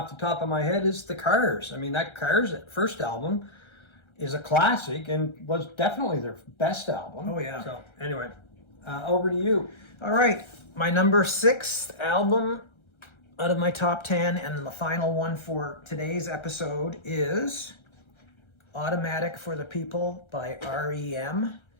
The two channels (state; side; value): late; right; 1.3 ms